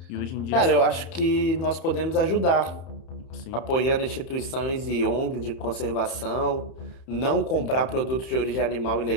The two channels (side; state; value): right; late; 31 ms